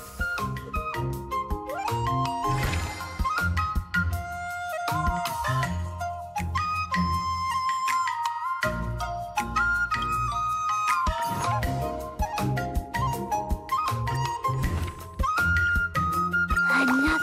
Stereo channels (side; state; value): both; identical; correlation 1.00